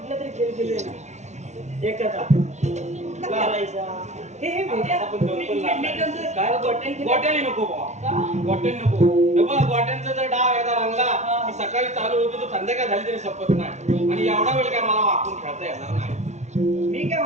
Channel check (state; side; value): late; left; 0.33 ms